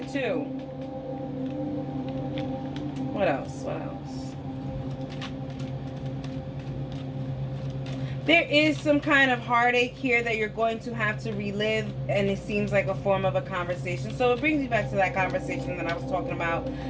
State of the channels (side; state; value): both; identical; correlation 1.00